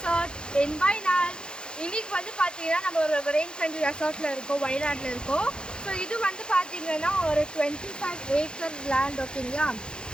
என்வாய்நாள். இன்னைக்கு வந்து பார்த்தீங்கன்னா நம்ம ஒரு ரெயின் ஃப்ரெண்ட்லி ரெசார்ட்டில் இருக்கோம், வயநாட்டில் இருக்கோம். ஸோ இது வந்து பார்த்தீங்கன்னா ஒரு 25 ஏக்கர் லேண்ட். ஓகேங்களா,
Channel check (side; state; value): right; late; 0.049 ms